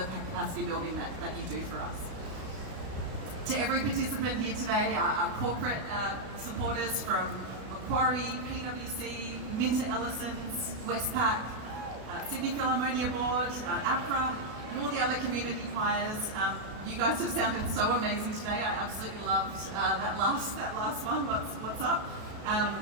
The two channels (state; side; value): late; left; 32 ms